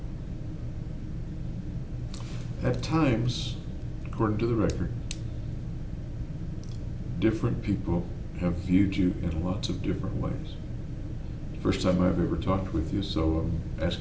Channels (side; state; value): both; identical; correlation 1.00